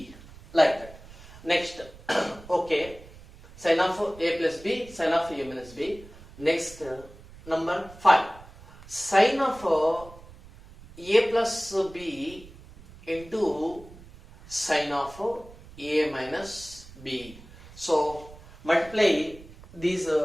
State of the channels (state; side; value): noise; right; rumble, 20 dB below the sound